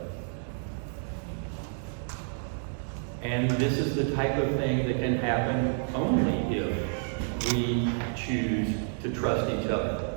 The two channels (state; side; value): silent; left; digital silence